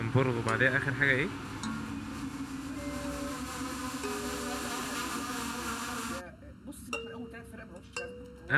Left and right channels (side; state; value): both; identical; correlation 1.00